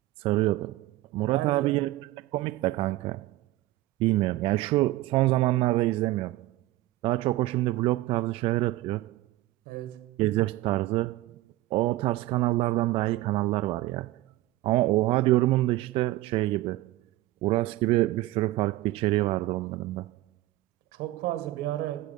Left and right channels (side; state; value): left; quieter; 17.2 dB